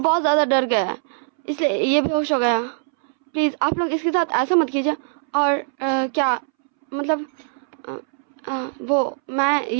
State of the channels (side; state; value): left; silent; 64 dB below the other